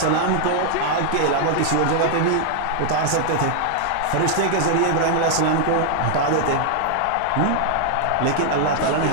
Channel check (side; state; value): both; different; correlation 0.00